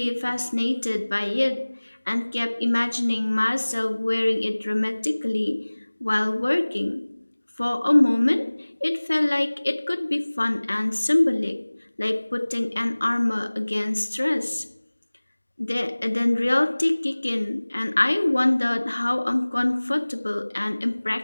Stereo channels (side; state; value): both; inverted; correlation -1.00